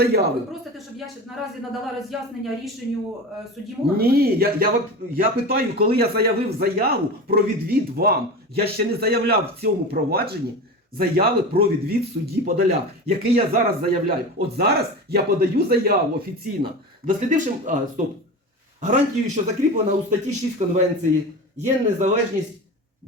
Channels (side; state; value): both; normal; correlation 0.29